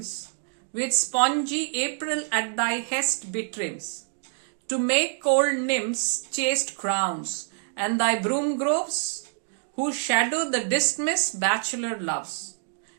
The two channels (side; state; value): left; silent; digital silence